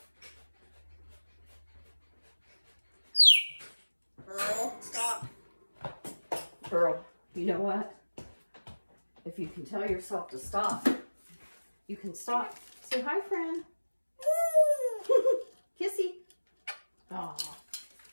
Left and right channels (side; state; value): both; inverted; correlation -1.00